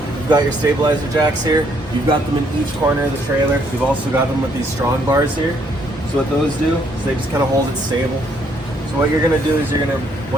you've got your stabilizer jacks here. You've got them in each corner of the trailer. You've also got them with these strong bars here. So what those do is they just kind of hold it stable. So what you're gonna do is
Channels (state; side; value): normal; both; correlation 0.69